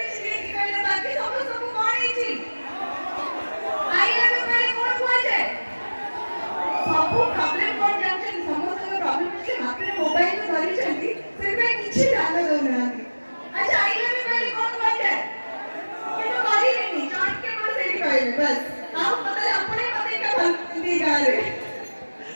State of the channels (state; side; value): inverted; both; correlation -1.00